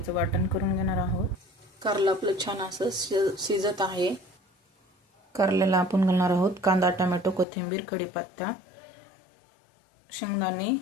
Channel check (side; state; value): right; drops out; at 7.5 s